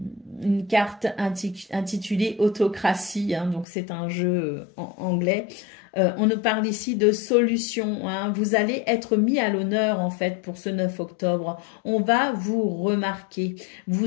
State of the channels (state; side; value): drops out; right; at 3.7 s